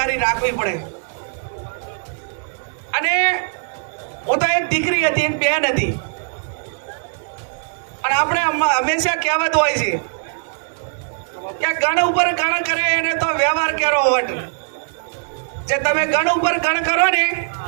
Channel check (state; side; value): silent; left; digital silence